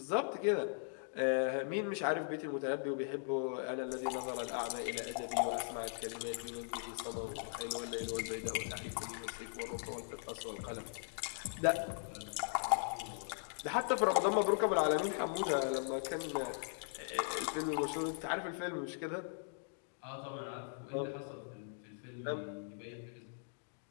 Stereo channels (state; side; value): silent; right; digital silence